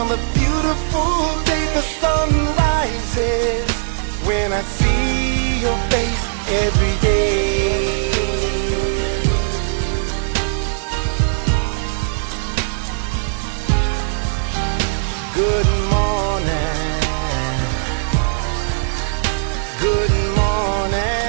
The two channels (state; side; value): silent; left; digital silence